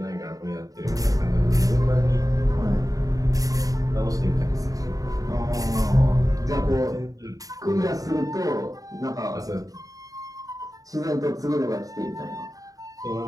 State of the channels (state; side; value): late; left; 0.17 ms